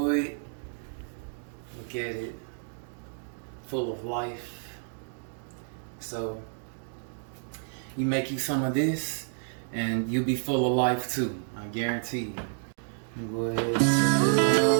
Look at it, full of life. So you make you some of this and you'll be full of life too, I guarantee you. Go ahead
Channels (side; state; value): left; silent; digital silence